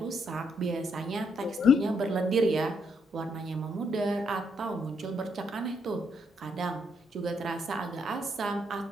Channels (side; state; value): both; normal; correlation 0.75